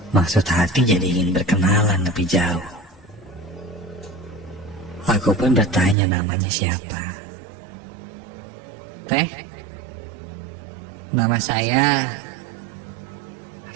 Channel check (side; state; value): left; drops out; at 6.0 s